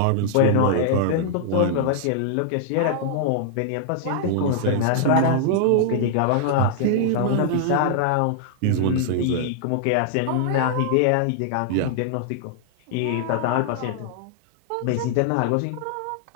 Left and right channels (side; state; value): both; different; correlation -0.01